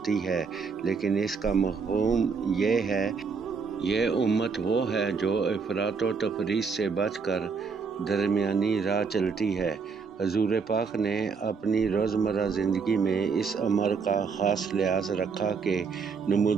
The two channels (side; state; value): left; quieter; 5.4 dB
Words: ہے، لیکن اس کا مفہوم یہ ہے، یہ امت وہ ہے جو افراط و تفریط سے بچ کر درمیانی راہ چلتی ہے۔ حضور پاک نے اپنی روزمرہ زندگی میں اس امر کا خاص لحاظ رکھا کہ